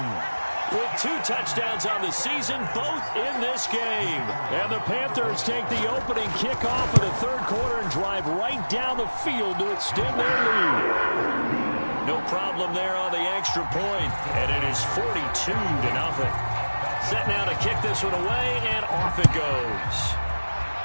with 2 touchdowns on the season, both in this game. And the Panthers take the opening kickoff of the 3rd quarter and drive right down the field to extend their lead. No problem there on the extra point, and it is 42-0. Set now to kick this one away, and off it goes.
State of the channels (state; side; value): inverted; both; correlation -1.00